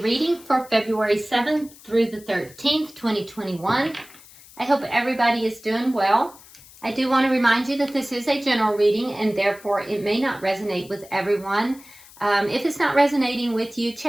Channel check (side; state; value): left; noise; hiss, 22 dB below the sound